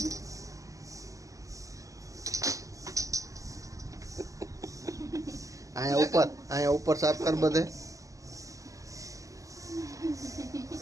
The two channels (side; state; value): left; late; 0.16 ms